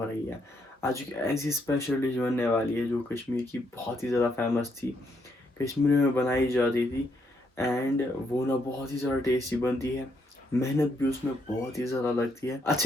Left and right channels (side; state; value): both; normal; correlation 0.76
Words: रही है। आज एक ऐसी स्पेशल डिश बनने वाली है जो कश्मीर की बहुत ही ज़्यादा फेमस थी, कश्मीर में बनाई जाती थी, एंड वो ना बहुत ही ज़्यादा टेस्टी बनती है। मेहनत भी उसमें बहुत ही ज़्यादा लगती है।